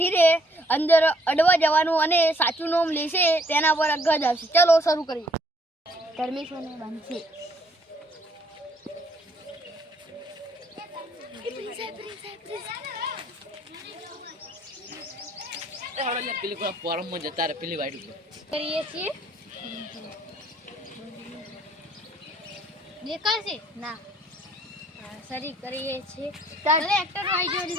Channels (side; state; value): both; normal; correlation 0.65